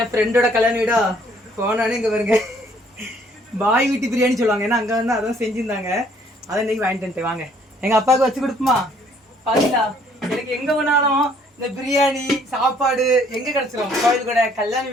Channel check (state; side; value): normal; both; correlation 0.62